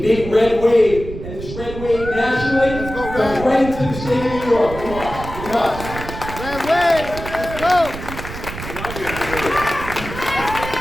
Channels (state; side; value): noise; right; rumble, 10 dB below the sound